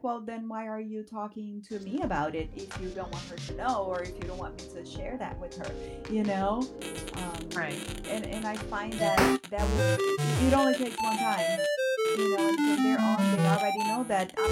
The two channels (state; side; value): identical; both; correlation 1.00